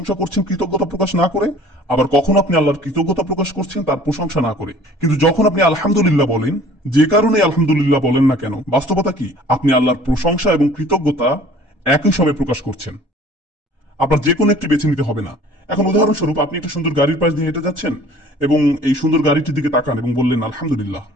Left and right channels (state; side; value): normal; both; correlation 0.50